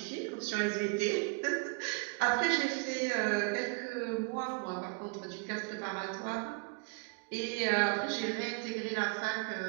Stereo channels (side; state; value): left; quieter; 33.6 dB